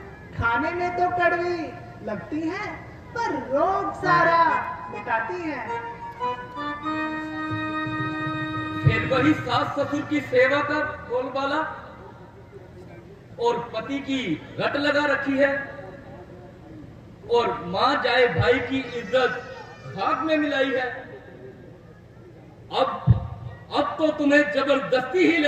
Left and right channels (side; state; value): both; identical; correlation 1.00